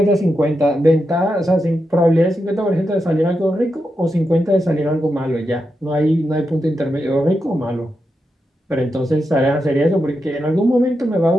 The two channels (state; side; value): normal; both; correlation 0.87